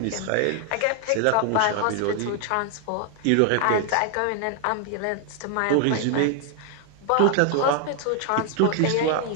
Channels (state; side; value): different; both; correlation 0.00